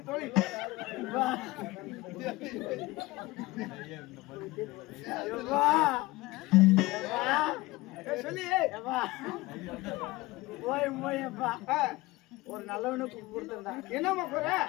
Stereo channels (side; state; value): right; quieter; 20.4 dB